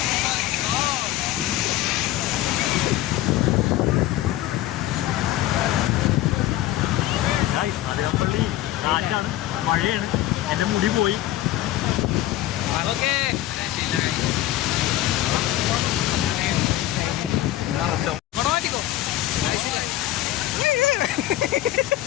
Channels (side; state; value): right; quieter; 14.5 dB